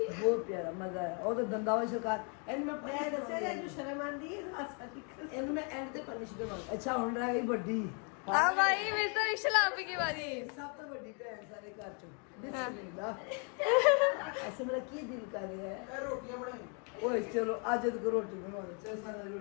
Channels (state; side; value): quieter; right; 38.3 dB